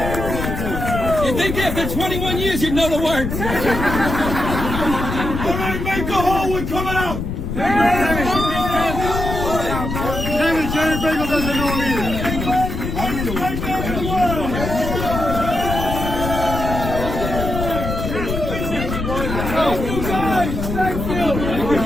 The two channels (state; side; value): noise; left; rumble, 4 dB below the sound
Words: You think after 21 years you'd know the words? All right, make the hole, we're coming out. Kevin, Jerry Bagel doesn't know him either. Thank